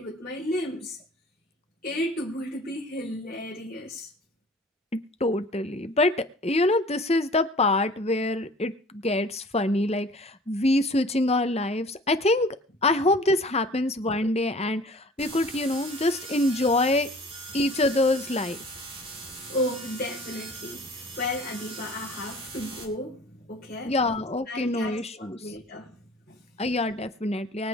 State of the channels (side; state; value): both; normal; correlation 0.47